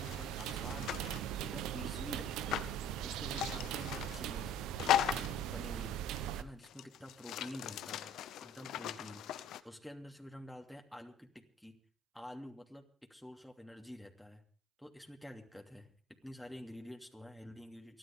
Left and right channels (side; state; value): both; normal; correlation 0.47